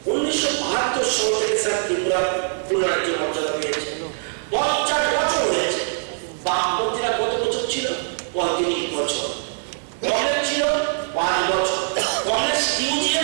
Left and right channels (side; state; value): left; silent; digital silence